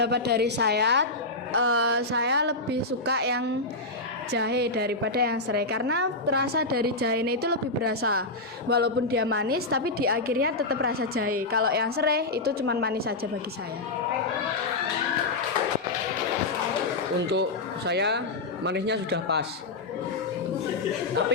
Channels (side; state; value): right; quieter; 3.1 dB